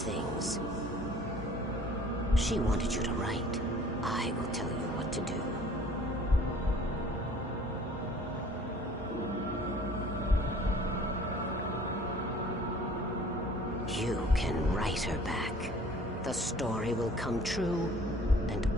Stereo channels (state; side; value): normal; both; correlation 0.51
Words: She wanted you to write. I will tell you what to do. You can write her back. The story will come true, and